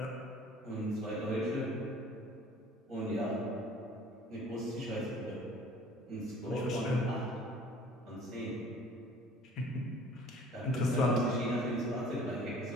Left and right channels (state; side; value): normal; both; correlation 0.50